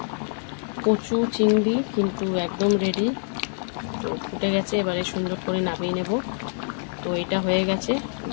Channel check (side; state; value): right; silent; 62 dB below the other